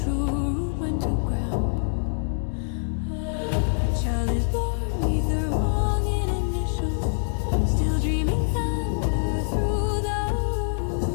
true root went to ground. A child is born with the wrong in initial, still dreaming thunder through the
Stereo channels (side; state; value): right; silent; 62 dB below the other